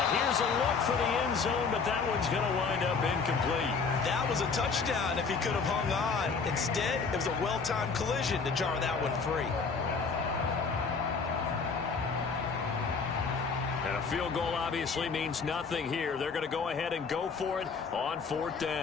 here's a look for the end zone, but that one's going to wind up incomplete. That was a touchdown if he could have hung on. Instead, it was a well-timed collision to jar that one free. And a field goal obviously means nothing here. They're going to go ahead and go for it on 4th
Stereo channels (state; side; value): quieter; right; 5.0 dB